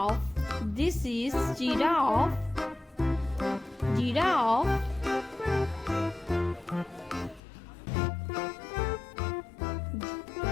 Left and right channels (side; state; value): right; drops out; at 7.4 s